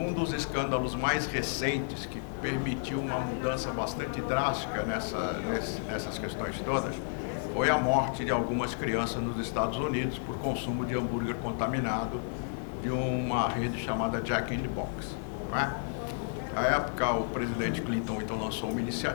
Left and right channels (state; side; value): silent; right; 57 dB below the other